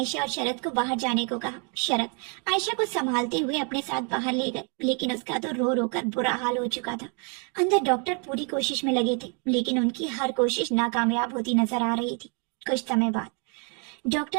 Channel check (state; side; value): quieter; left; 37.3 dB